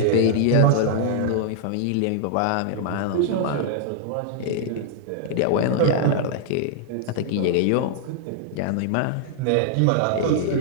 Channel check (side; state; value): both; different; correlation -0.01